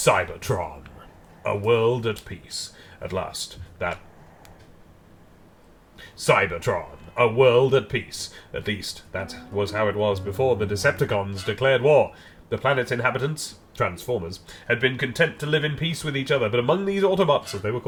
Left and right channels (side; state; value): both; identical; correlation 1.00